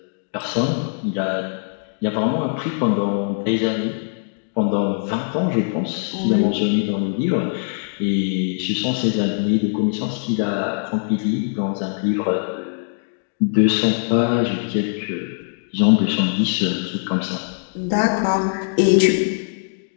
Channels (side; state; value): right; silent; digital silence